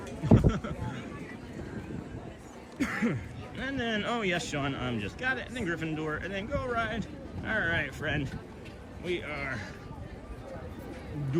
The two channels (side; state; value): both; identical; correlation 1.00